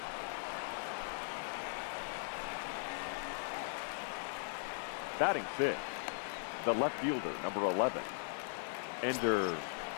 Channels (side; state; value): right; silent; digital silence